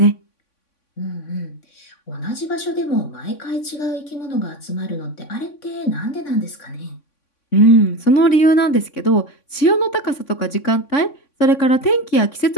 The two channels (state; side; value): late; right; 3.5 ms